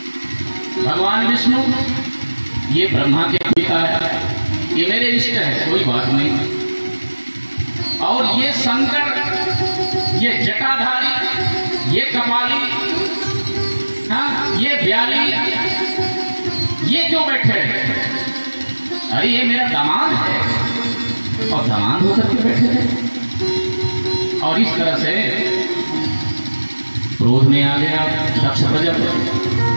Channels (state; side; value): inverted; both; correlation -1.00